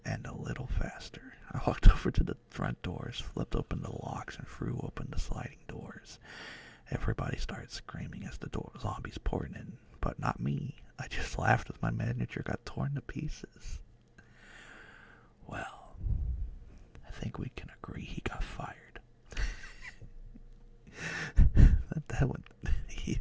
end a little faster. I walked over to the front doors, flipped open the locks, and threw open the sliding doors. Everybody started screaming as the zombies poured in, but not me. I just laughed as my manager got torn to pieces. Well, I think we can agree he got fired. that one, he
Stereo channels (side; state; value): both; identical; correlation 1.00